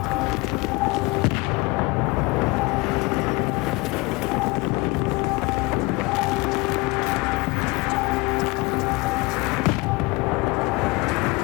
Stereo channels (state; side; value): quieter; right; 24.3 dB